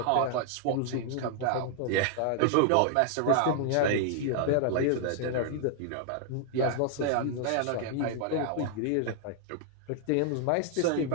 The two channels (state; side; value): different; both; correlation 0.00